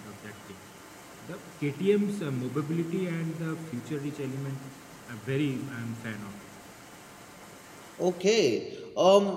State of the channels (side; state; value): both; identical; correlation 1.00